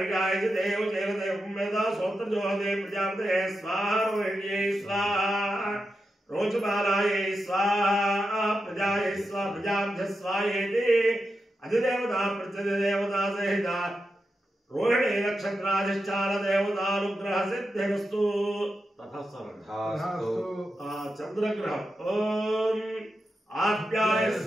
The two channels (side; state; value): both; normal; correlation 0.88